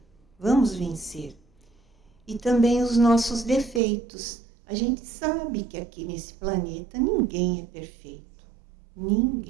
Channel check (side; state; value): left; drops out; at 3.8 s